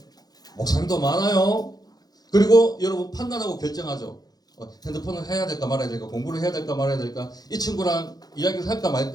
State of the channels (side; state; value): right; late; 0.19 ms